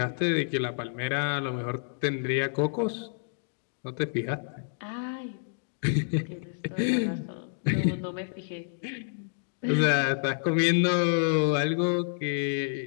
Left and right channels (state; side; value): silent; right; digital silence